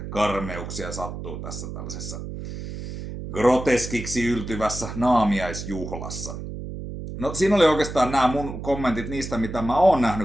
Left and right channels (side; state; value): right; noise; hum, 8 dB below the sound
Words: karmeuksia sattuu tässä tällaisessa groteskiksi yltyvässä naamiaisjuhlassa. No siinä oli oikeastaan nämä mun kommentit niistä, mitä mä oon